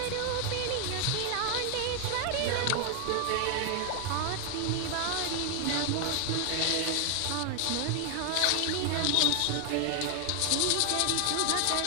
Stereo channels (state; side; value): different; both; correlation 0.00